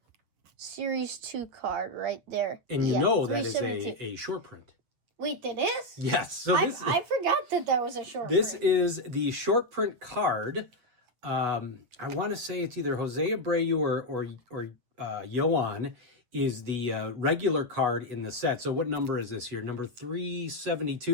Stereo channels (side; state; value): left; late; 8.2 ms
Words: Series 2 card right there. And you know that is a short print. Wait, that is? Yes. So I forgot that was a short print. This is the short print card. I want to say it's either Jose Abreu or Yoan is the regular card in the set. So what number is this here? Number